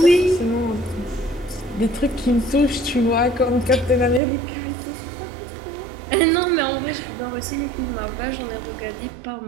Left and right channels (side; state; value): left; drops out; at 4.2 s